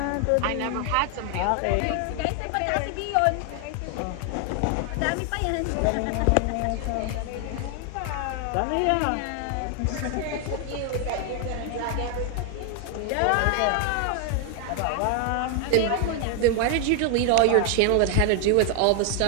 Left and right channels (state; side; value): different; both; correlation 0.00